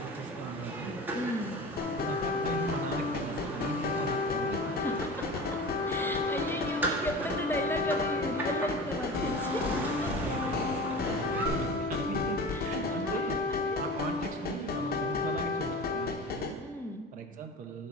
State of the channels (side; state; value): both; normal; correlation 0.34